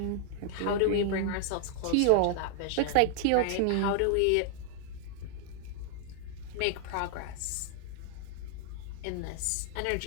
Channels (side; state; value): both; different; correlation 0.00